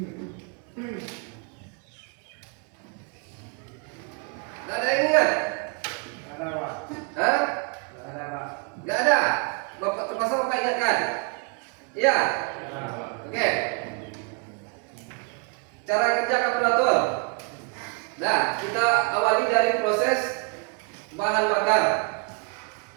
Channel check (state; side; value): quieter; left; 36.1 dB